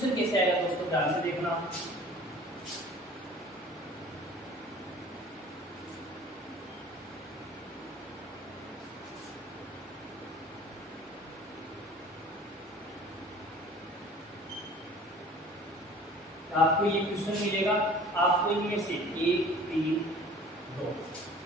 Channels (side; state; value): both; normal; correlation 0.46